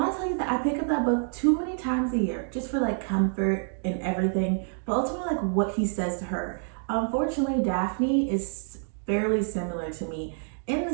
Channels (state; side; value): silent; left; 60 dB below the other